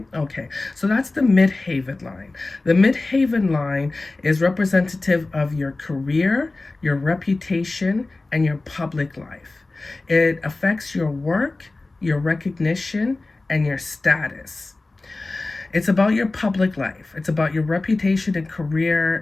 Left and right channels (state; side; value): quieter; right; 3.2 dB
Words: Okay, so that's the Midhaven line. The Midhaven line is representative of your career, your reputation, and your public life. It affects your work, your recognition, and your status. It's about your public life. It's about your reputation and